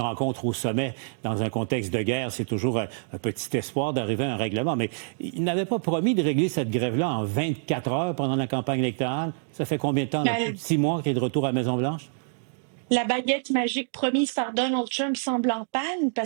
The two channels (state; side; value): silent; left; digital silence